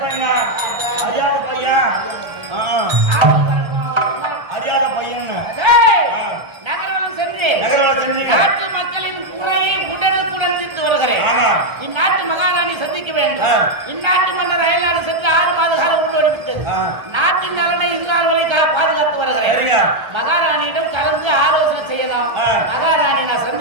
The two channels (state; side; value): late; left; 1.3 ms